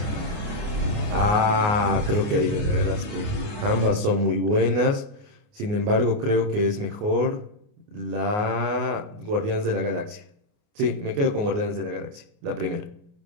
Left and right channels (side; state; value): left; late; 29 ms